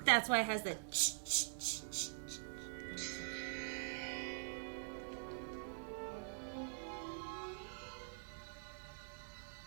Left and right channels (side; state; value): left; silent; digital silence